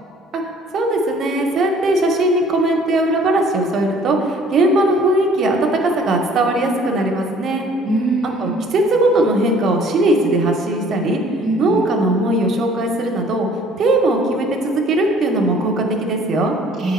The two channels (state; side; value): normal; both; correlation 0.55